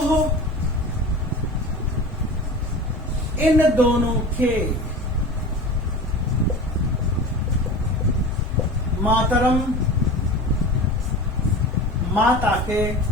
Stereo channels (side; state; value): both; normal; correlation 0.34